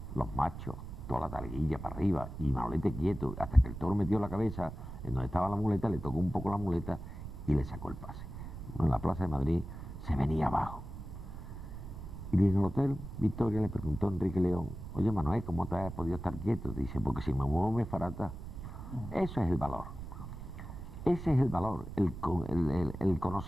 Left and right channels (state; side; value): noise; right; rumble, 10 dB below the sound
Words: los machos, toda la talguilla para arriba, y Manolete quieto, hasta que el toro metió la cabeza en donde estaba la muleta, le tocó un poco la muleta y le sacó el pase. En la Plaza de Madrid se venía abajo. Y en el hotel Victoria le preguntó a Enrique León: oye, Manuel, ¿cómo te has podido estar quieto? Dice: porque si me muevo me farata. Eso es el valor. Ese es el valor, el